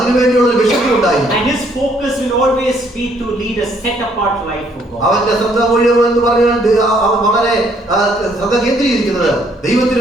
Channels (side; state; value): both; normal; correlation 0.66